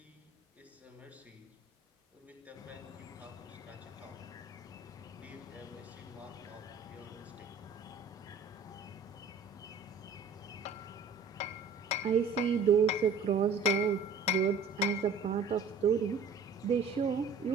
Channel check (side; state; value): left; quieter; 4.6 dB